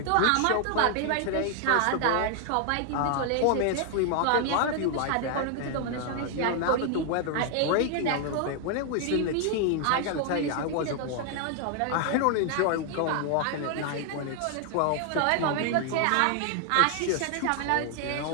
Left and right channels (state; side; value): different; both; correlation 0.00